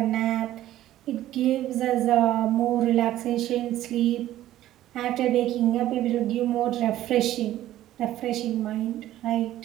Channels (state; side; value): quieter; left; 13.7 dB